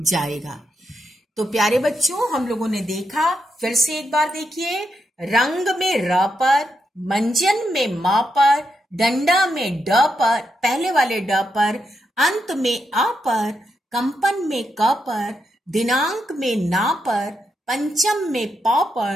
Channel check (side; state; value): both; normal; correlation 0.83